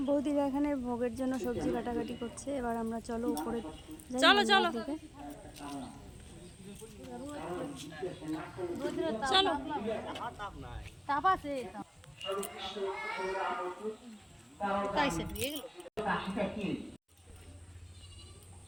বৌদিরা এখানে ভোগের জন্য সবজি কাটাকাটি করছে। এবার আমরা চলো উপরে, চলো চলো চলো।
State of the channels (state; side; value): identical; both; correlation 1.00